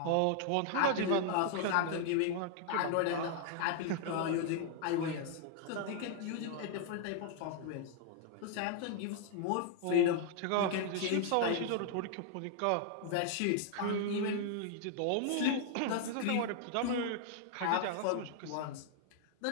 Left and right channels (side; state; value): both; different; correlation 0.00